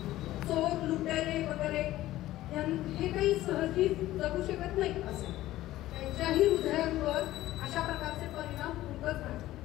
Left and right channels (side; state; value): right; quieter; 15.4 dB